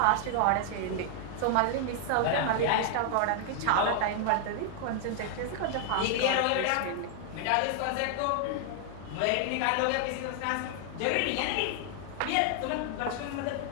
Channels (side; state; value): both; different; correlation 0.00